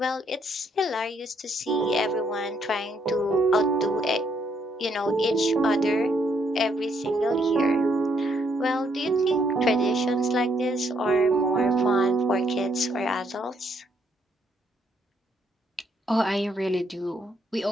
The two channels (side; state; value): both; normal; correlation 0.72